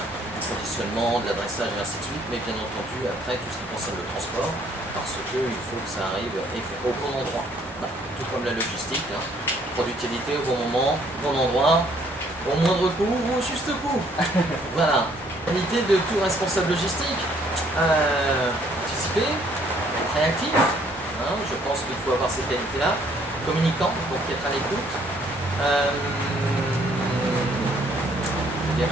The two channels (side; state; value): both; normal; correlation 0.64